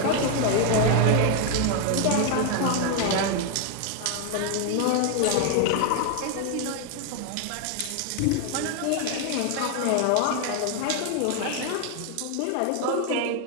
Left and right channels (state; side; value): different; both; correlation 0.01